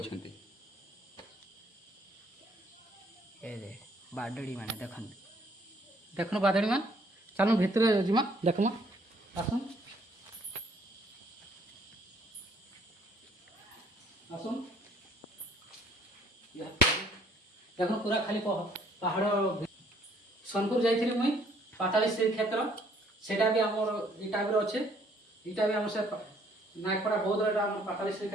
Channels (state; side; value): normal; both; correlation 0.62